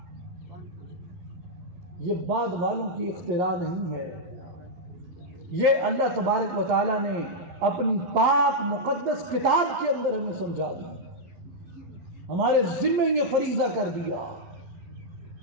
یہ بعد والوں کی اختراع نہیں ہے، یہ اللہ تبارک و تعالی نے اپنی پاک مقدس کتاب کے اندر ہمیں سمجھا دی، ہمارے ذمے یہ فریضہ کر دیا۔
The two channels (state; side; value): late; left; 11 ms